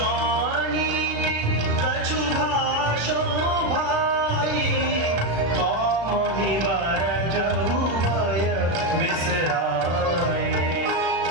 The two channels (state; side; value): late; left; 36 ms